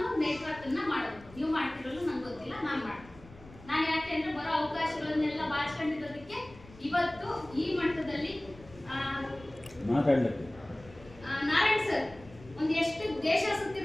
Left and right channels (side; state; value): left; noise; rumble, 21 dB below the sound